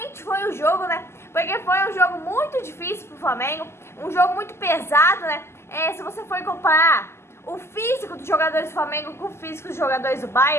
foi o jogo, né? Porque foi um jogo muito difícil pro Flamengo, um jogo muito pesado, né? Se você for comparar o físico dos jogadores do Flamengo com o físico dos jogadores do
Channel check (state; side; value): late; right; 0.12 ms